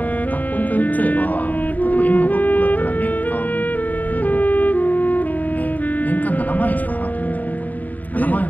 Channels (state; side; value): late; right; 0.079 ms